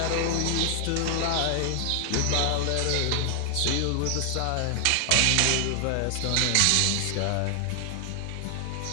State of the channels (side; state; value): both; different; correlation 0.00